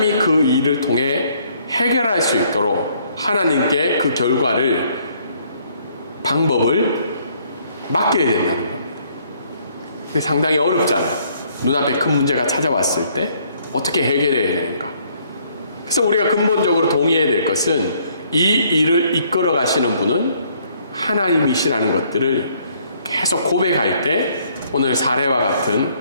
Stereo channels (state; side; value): inverted; both; correlation -0.65